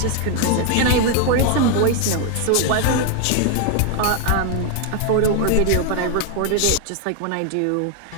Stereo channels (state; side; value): different; both; correlation 0.01